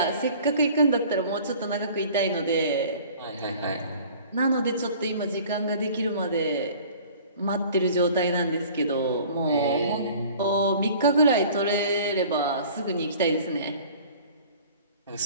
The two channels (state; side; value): inverted; both; correlation -0.47